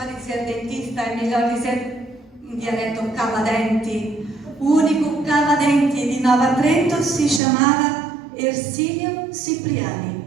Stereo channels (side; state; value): left; drops out; at 7.4 s